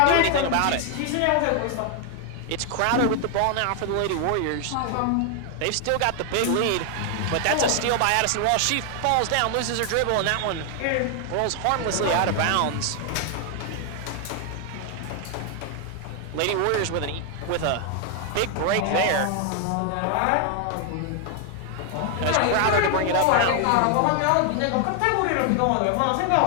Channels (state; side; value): different; both; correlation 0.00